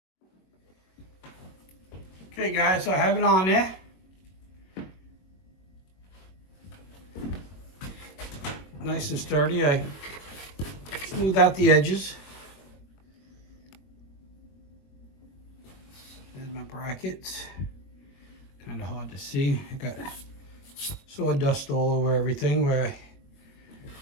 Okay guys, so I have it on there. Nice and sturdy. I smooth out the edges. There's my brackets. Kind of hard to see. I got sawdust all over everything where I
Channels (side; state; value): right; late; 21 ms